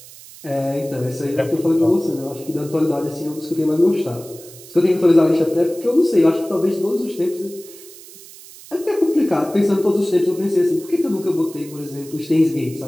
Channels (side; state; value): right; noise; hiss, 19 dB below the sound